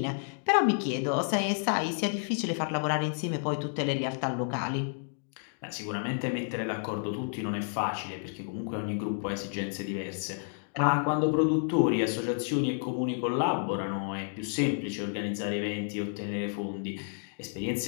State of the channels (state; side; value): silent; right; digital silence